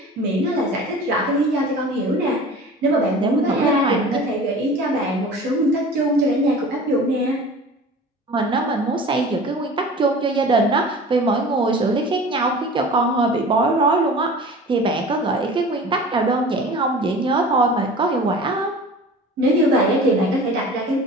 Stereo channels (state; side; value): normal; both; correlation 0.40